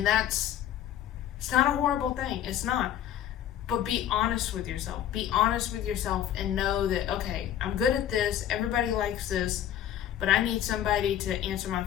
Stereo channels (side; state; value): right; quieter; 10.8 dB